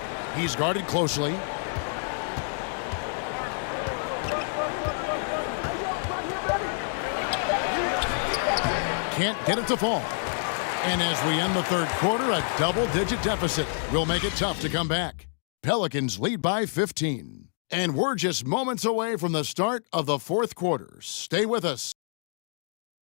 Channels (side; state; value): right; silent; digital silence